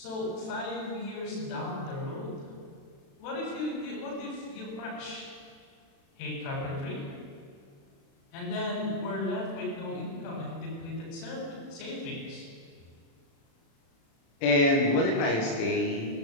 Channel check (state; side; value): late; right; 36 ms